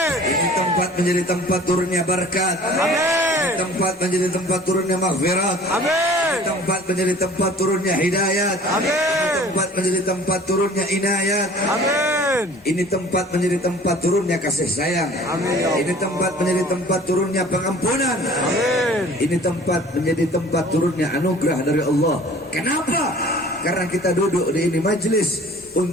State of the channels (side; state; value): both; normal; correlation 0.48